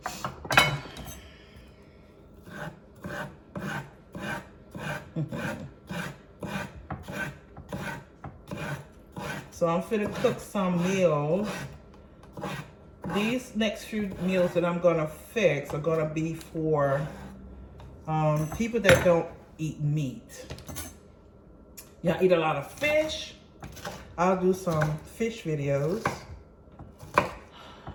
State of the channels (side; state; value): both; identical; correlation 1.00